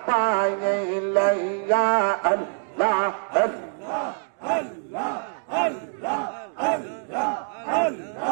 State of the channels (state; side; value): silent; left; digital silence